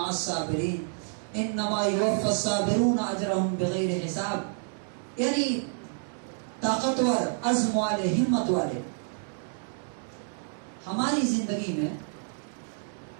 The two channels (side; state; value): left; silent; 59 dB below the other